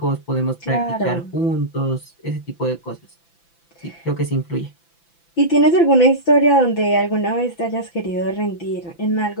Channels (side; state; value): right; late; 5.9 ms